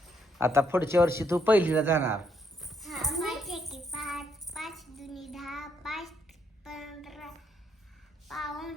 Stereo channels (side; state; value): both; normal; correlation 0.74